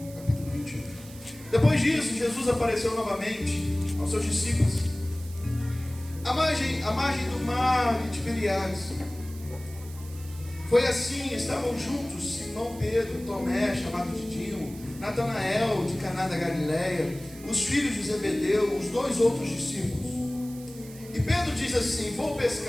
capítulo 21. Depois disso, Jesus apareceu novamente aos seus discípulos à margem do mar de Tiberíades. Foi assim, estavam juntos Simão Pedro, Tomé, chamado Didimo, Natanael, de Caná da Galileia, os filhos de Zebedeu, os 2 outros discípulos. E Pedro diz assim: vou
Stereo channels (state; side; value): noise; right; hiss, 19 dB below the sound